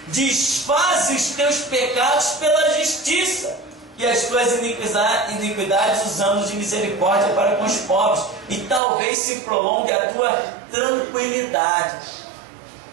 Desfaze os teus pecados pela justiça e as tuas iniquidades os anos de misericórdia para com os pobres, e talvez se prolongue a tua tranquilidade.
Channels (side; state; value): left; drops out; at 8.8 s